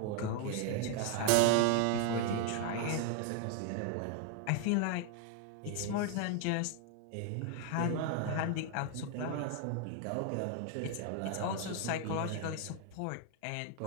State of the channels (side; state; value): both; different; correlation 0.00